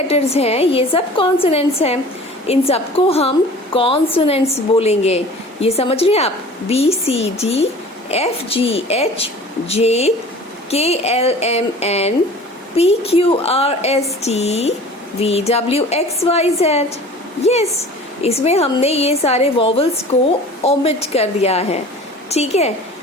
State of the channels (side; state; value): both; normal; correlation 0.43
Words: हैं ये सब कॉन्सोनेंट्स हैं. इन सबको हम कॉन्सोनेंट्स बोलेंगे. ये समझ रहे हैं आप, B C D F G H J K L M N P Q R S T V W X Y Z. Yes, इसमें हमने ये सारे वॉवल्स को ओमिट कर दिया है, ठीक है.